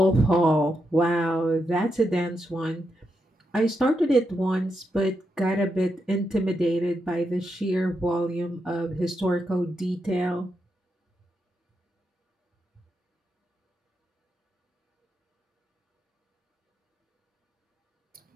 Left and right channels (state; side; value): normal; both; correlation 0.84